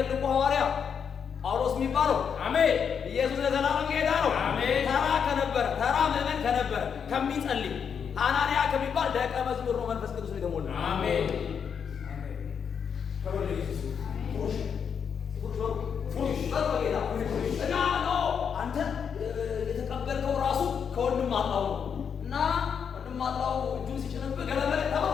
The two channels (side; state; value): right; quieter; 7.1 dB